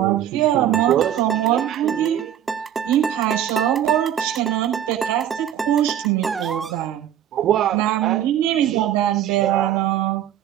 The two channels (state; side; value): quieter; left; 10.7 dB